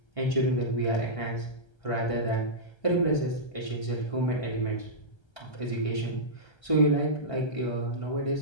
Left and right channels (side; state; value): right; late; 1.3 ms